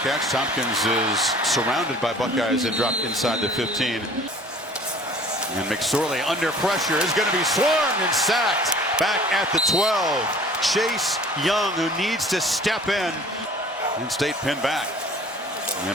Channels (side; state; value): both; normal; correlation 0.49